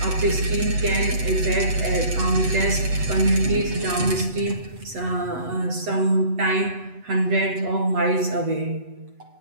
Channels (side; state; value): left; late; 8.1 ms